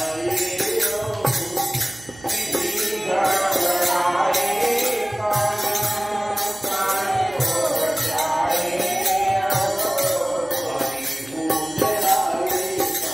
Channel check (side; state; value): right; noise; hum, 22 dB below the sound